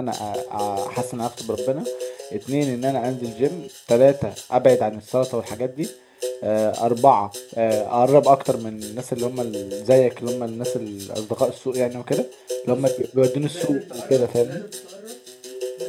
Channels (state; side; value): identical; both; correlation 1.00